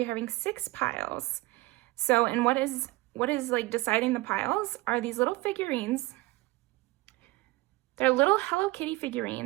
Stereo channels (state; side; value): quieter; left; 20.1 dB